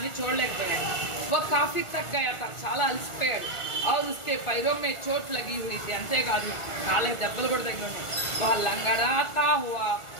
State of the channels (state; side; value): late; right; 1.4 ms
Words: చూడలేకపోయాడు। वो काफी थक गया था, చాలా అలసిపోయాడు। और उसके पैरों में चोट लगी हुई थी, అంతేకాదు కాళ్ళకి దెబ్బలు కూడా తగిలి ఉన్నాయి। वह लंगड़ाता हुआ